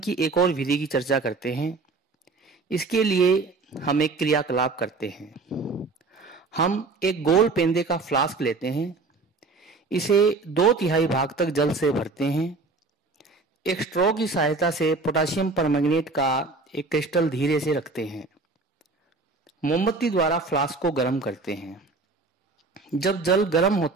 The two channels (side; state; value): left; quieter; 3.8 dB